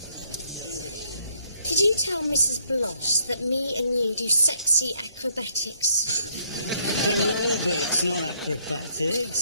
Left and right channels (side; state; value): both; inverted; correlation -0.69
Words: tell Mrs. Bloss that me and you do sexy acrobatics? Aerobics, not